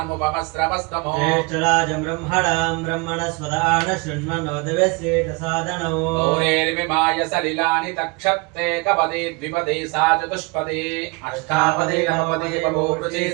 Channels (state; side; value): quieter; left; 28.1 dB